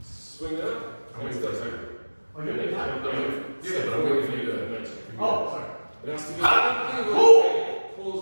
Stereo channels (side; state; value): both; inverted; correlation -1.00